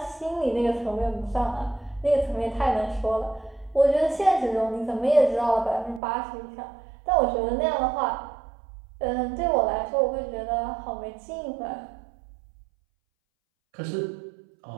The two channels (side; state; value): left; drops out; at 6.0 s